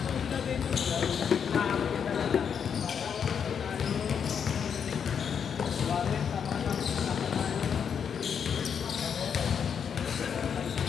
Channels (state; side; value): quieter; right; 7.3 dB